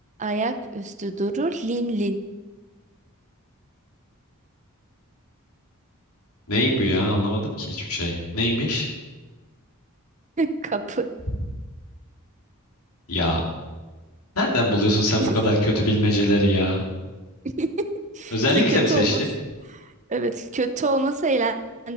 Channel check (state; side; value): normal; both; correlation 0.30